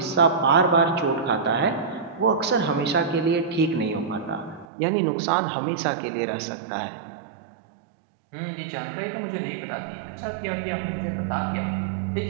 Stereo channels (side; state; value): left; drops out; at 4.7 s